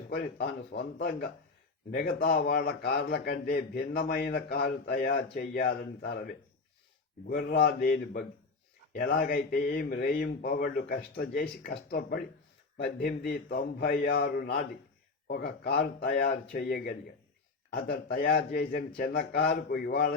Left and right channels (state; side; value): quieter; right; 4.0 dB